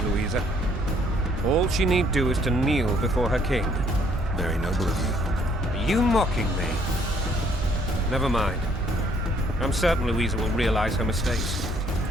Louisa. All she need do is to kneel before her king. Very noble of you. Are you mocking me? Never mind. I'm certain Louisa will realize her mistakes.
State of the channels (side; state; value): both; normal; correlation 0.65